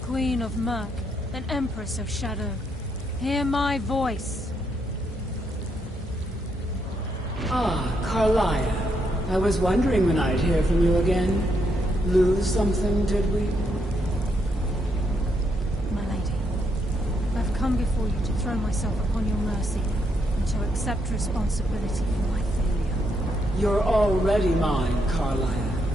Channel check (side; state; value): both; normal; correlation 0.77